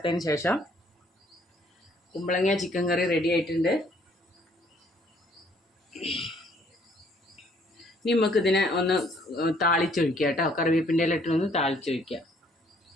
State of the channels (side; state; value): both; normal; correlation 0.63